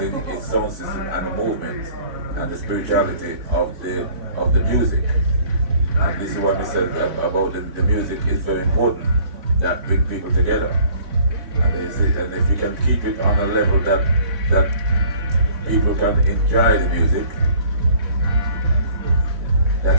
is sound system and the movement and the spirituality of the music. And this is what we said about the music is very important, that bring people together. And if you can keep it on a level that people can enjoy the music,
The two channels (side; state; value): left; late; 3.6 ms